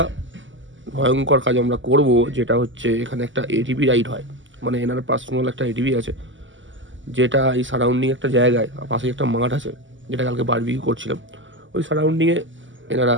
ভয়ঙ্কর কাজ আমরা করব, যেটা হচ্ছে এখানে একটা এটিভি রাইড হয়, মানে এনার পার্সোনাল একটা এটিভি আছে, যেটা এই সারাউন্ডিং একটা জায়গায়, পাশে একটা মাঠ আছে, যেটা কালকে বারবিকিউ করছিলাম, ওই সারাউন্ডিংয়ে এনারা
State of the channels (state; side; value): late; left; 0.55 ms